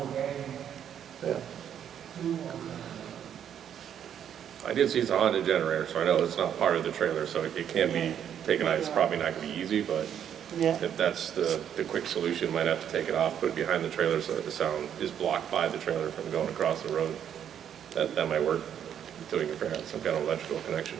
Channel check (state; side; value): quieter; left; 9.2 dB